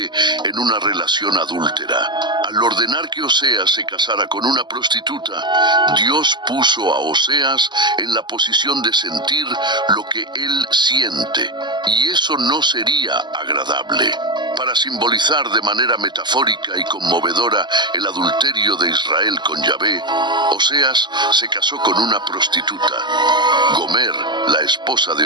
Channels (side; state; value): left; late; 0.21 ms